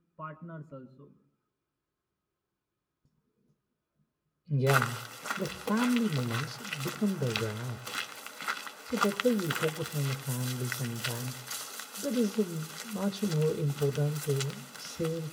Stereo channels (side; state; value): both; identical; correlation 1.00